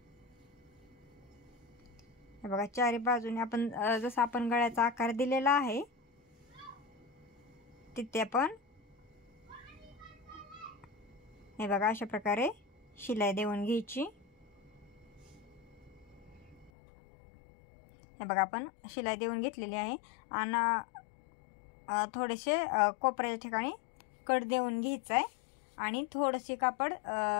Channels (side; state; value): right; drops out; at 16.7 s